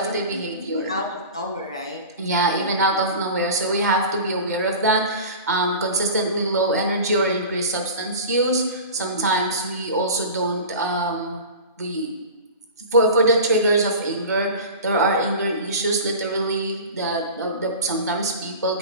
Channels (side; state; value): both; inverted; correlation -0.34